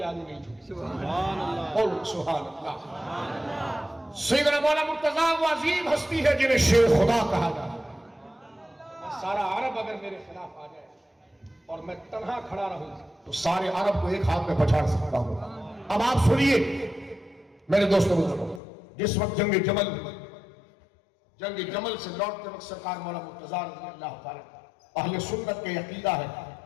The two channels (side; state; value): right; drops out; at 18.6 s